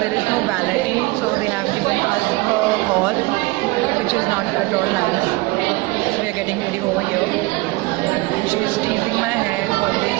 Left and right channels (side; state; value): left; quieter; 22.4 dB